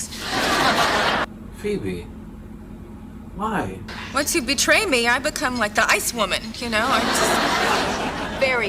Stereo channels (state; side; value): identical; both; correlation 1.00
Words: Phoebe. Why? Once you betray me, I become like the ice woman, you know? I'm just